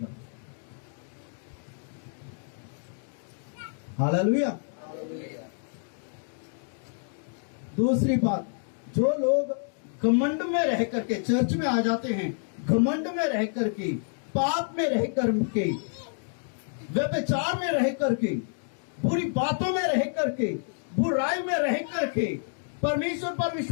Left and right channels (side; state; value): right; silent; digital silence